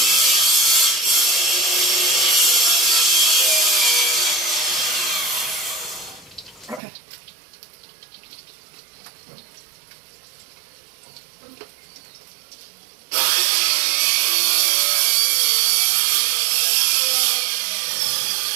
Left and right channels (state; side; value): drops out; left; at 6.8 s